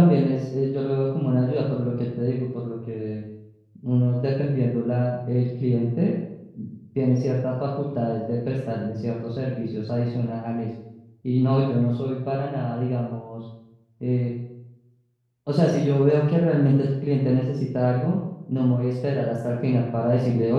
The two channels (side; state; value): both; identical; correlation 1.00